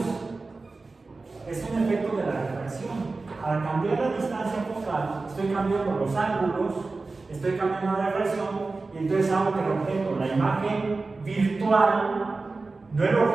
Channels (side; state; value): left; quieter; 3.7 dB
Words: Es un efecto de la refracción. Al cambiar la distancia focal, estoy cambiando los ángulos, estoy cambiando la refracción, y entonces hago que el objeto, la imagen virtual, no el